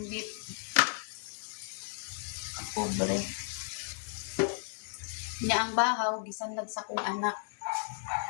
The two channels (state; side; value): silent; right; digital silence